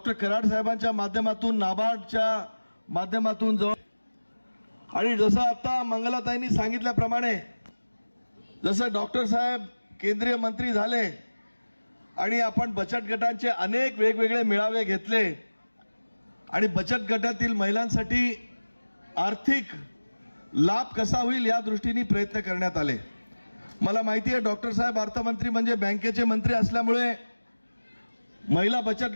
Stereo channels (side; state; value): both; inverted; correlation -1.00